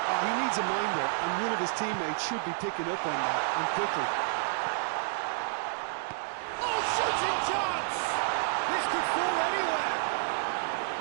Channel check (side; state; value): left; silent; digital silence